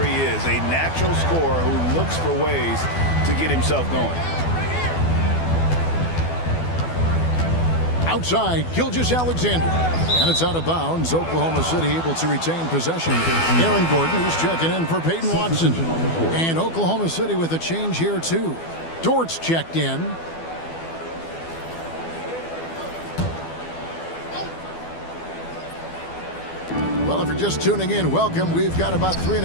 is, a natural scorer who looks for ways to get himself going. Outside, Gilgeous-Alexander. And it's out of bounds. Oklahoma City able to retain possession. Aaron Gordon is checking in for Peyton Watson. And Oklahoma City with a change here, too. Dort's checked in. Well, if you're just tuning in, welcome. We've got about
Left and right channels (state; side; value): late; right; 12 ms